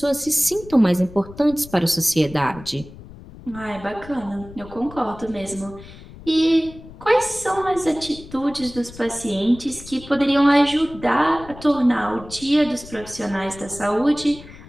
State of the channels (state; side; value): noise; left; rumble, 17 dB below the sound